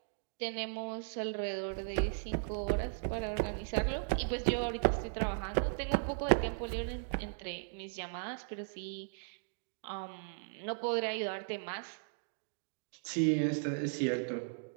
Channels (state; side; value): silent; left; digital silence